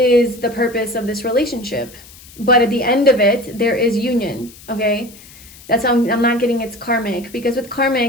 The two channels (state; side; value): noise; left; hiss, 21 dB below the sound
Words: the purpose of this relationship. But at the end of it, there is union, okay? That's how I'm not getting it's karmic, because with